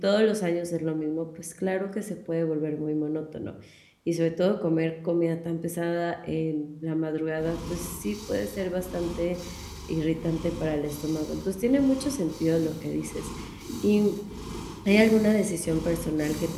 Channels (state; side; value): identical; both; correlation 1.00